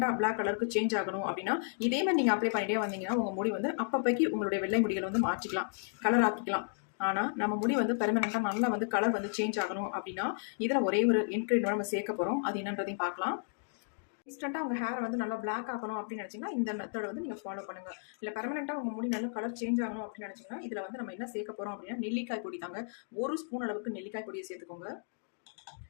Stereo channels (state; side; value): silent; right; digital silence